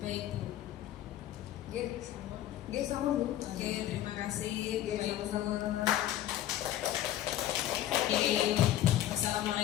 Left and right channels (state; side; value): quieter; right; 12.8 dB